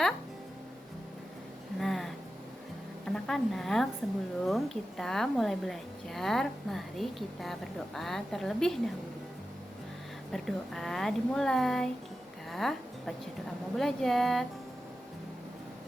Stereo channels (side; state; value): both; normal; correlation 0.92